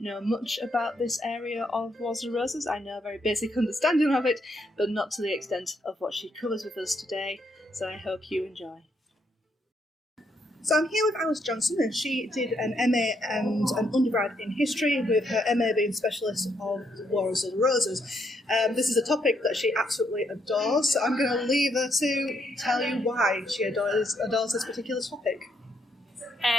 know much about this area of Wars of the Roses. I know a very basic understanding of it, but not to the extent of what she covers with us today, so I hope you enjoy. So I'm here with Alice Johnson, and she did an MA and an undergrad in history, with her MA being specialist of the Wars of the Roses. This is a topic that she absolutely adores, so I'm going to leave her to tell you why she adores this particular topic.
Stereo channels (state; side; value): normal; both; correlation 0.75